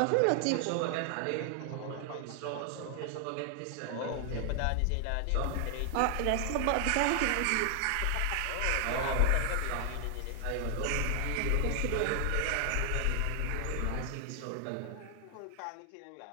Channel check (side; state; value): both; different; correlation 0.00